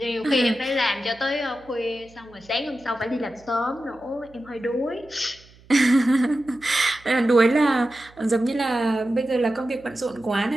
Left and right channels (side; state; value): right; noise; hum, 26 dB below the sound